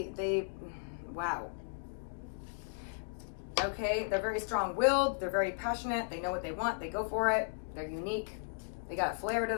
wow. Okay, they're very strong-willed, they're very passionate, they know what they want, they go for it, they're unique, they got a flair to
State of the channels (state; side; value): quieter; right; 38.6 dB